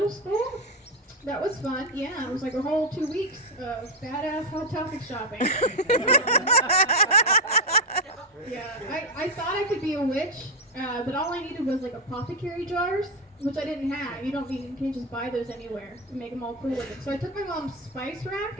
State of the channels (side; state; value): both; normal; correlation 0.04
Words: school. That was fun. Yeah, it was like a whole 2 weeks of badass Hot Topic shopping. Yeah, I thought I could be a witch, but all I needed was like apothecary jars, which I didn't have. You can't just buy those anywhere to make them all cool looking. So I took my mom's spice rack